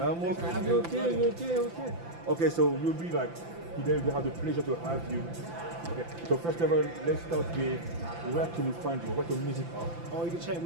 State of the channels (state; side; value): late; left; 5.9 ms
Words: I'm okay. Okay, so we'll be like. Today we have the pleasure to have you. Okay, so first of all, let's start with where can we find you? What's your music on? Oh, you can check